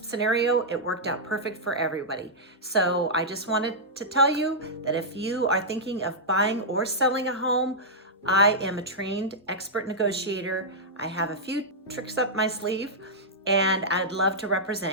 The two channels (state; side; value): normal; both; correlation -0.09